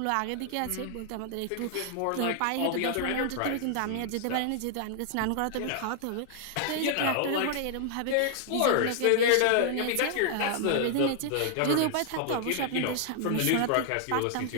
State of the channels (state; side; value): different; both; correlation 0.00